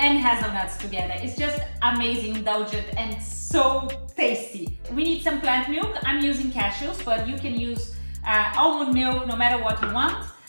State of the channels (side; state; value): both; inverted; correlation -1.00